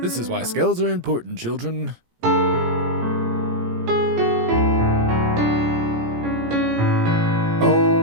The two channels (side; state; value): left; late; 17 ms